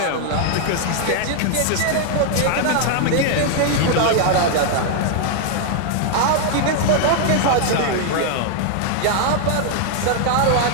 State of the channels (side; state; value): both; different; correlation 0.00